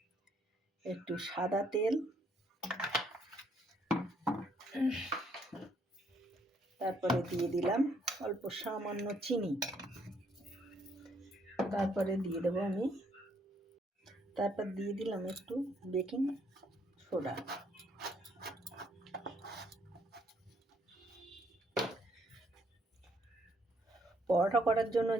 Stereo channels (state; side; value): normal; both; correlation 0.69